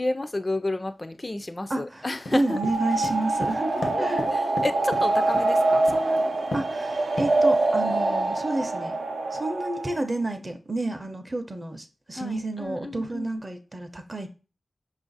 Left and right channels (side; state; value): both; normal; correlation 0.94